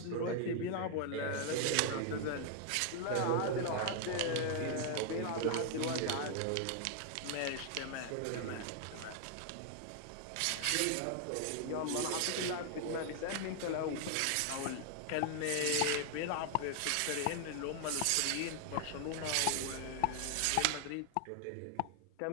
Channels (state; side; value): different; both; correlation 0.00